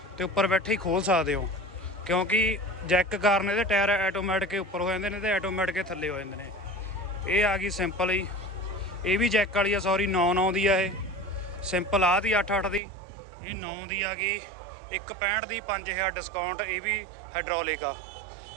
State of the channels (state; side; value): drops out; left; at 12.8 s